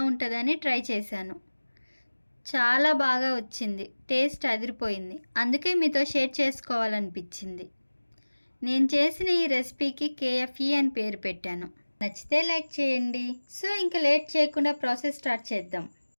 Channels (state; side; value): inverted; both; correlation -1.00